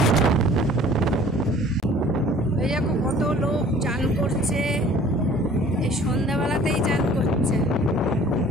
এই দেখো কত লোক চান করছে, এই সন্ধ্যাবেলাতেই চান করছে।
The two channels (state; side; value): normal; both; correlation 0.51